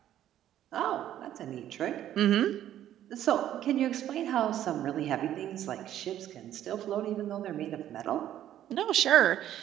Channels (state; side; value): quieter; left; 11.7 dB